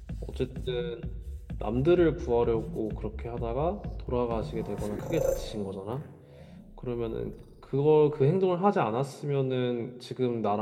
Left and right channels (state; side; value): identical; both; correlation 1.00